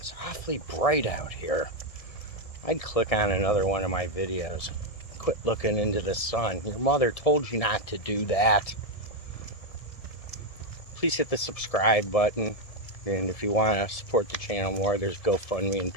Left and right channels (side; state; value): right; late; 1.7 ms